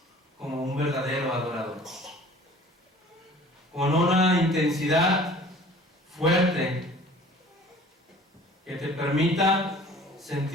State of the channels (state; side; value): normal; both; correlation 0.48